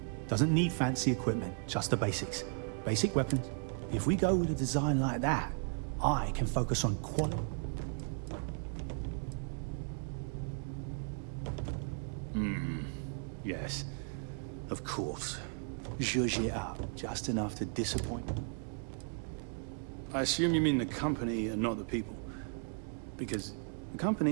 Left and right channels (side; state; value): left; silent; 54 dB below the other